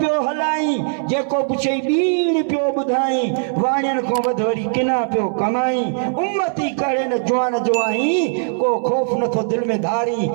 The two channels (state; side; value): silent; left; digital silence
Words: हलाई जेको पुछई ॿीण पियो ॿुधाई वाणियुनि खां वधि वरी किना पियो कमाई उम्मती करे न जुआन जुआई को ख़ौफ़ नथो दिलि में धारी